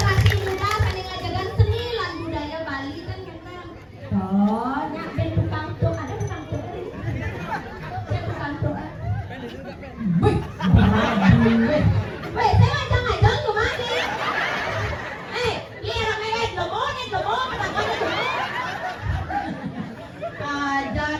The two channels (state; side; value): identical; both; correlation 1.00